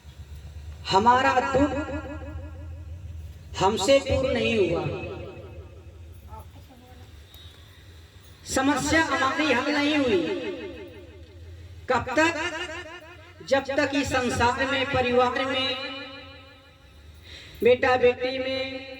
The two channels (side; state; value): both; identical; correlation 1.00